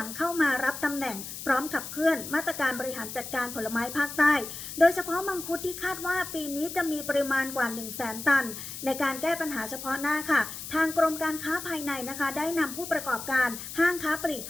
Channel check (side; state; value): left; noise; hiss, 9 dB below the sound